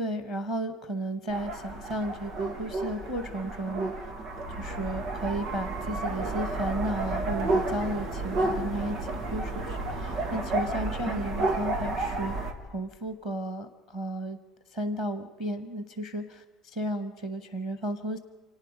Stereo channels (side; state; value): both; normal; correlation 0.53